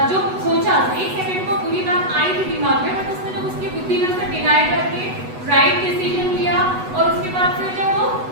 जो सोचा, एक सेकंड को पूरी बात आई थी दिमाग में, बट उसने जब उसकी बुद्धि में उसे डिनाई करके राइट डिसीजन लिया, और उसके बाद फिर जब वो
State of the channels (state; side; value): late; left; 8.1 ms